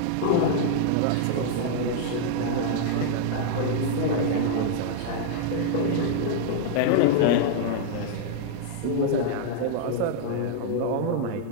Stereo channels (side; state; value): both; different; correlation -0.01